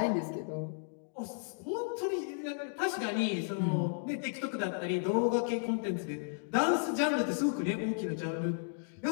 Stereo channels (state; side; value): silent; right; digital silence